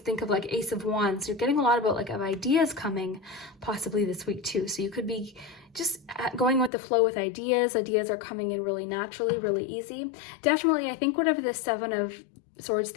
think of like Ace of Wands. You're getting a lot about like of ideas coming possibly this week too. So you could be just going with the flow with ideas. Ideas are coming in really naturally, really easy. Definitely, I think whatever the 7 of Swords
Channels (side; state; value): right; drops out; at 6.7 s